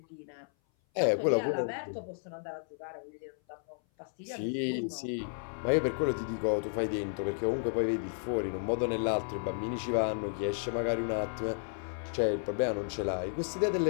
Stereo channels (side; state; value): right; silent; 56 dB below the other